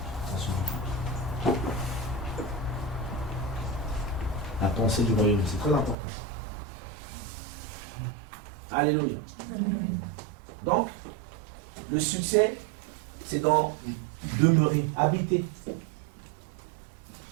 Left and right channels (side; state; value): left; drops out; at 6.0 s